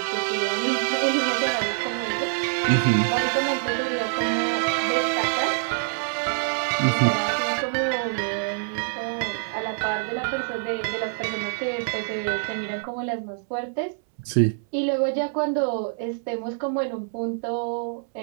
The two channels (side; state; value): left; silent; 61 dB below the other